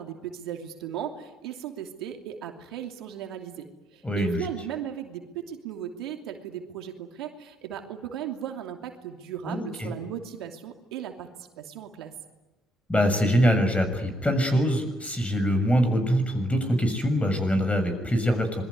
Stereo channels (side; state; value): both; normal; correlation 0.75